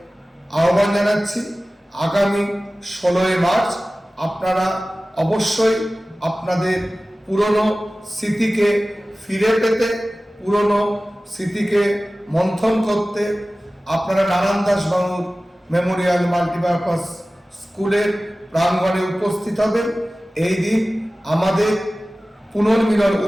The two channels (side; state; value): both; normal; correlation 0.97